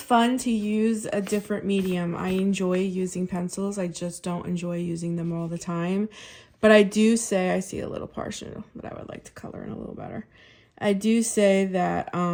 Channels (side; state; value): both; identical; correlation 1.00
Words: fun to use a different medium. I enjoy using pencils. I just don't enjoy using them all the time. But I do say, I see a little partial, but I would like to color in a little better. I do say that